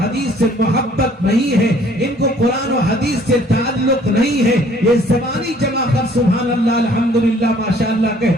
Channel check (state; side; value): normal; both; correlation 0.58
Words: حدیث سے محبت نہیں ہے، ان کو قرآن و حدیث سے تعلق نہیں ہے، یہ زبانی جمع کر سبحان اللہ الحمدللہ ماشاءاللہ